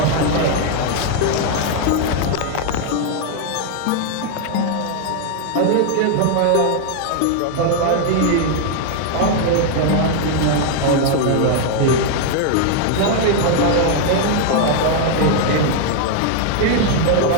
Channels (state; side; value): different; both; correlation 0.00